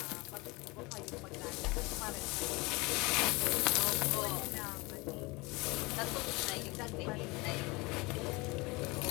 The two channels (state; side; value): quieter; right; 24.7 dB